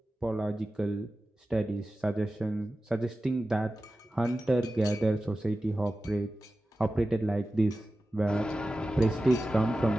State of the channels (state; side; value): normal; both; correlation 0.94